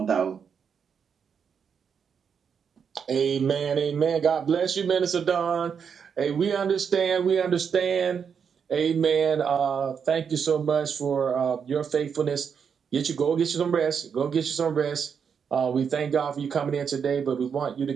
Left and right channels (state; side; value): quieter; left; 6.9 dB